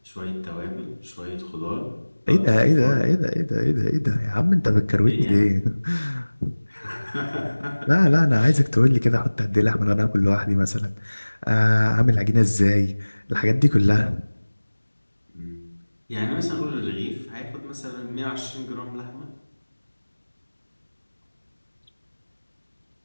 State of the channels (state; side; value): inverted; both; correlation -1.00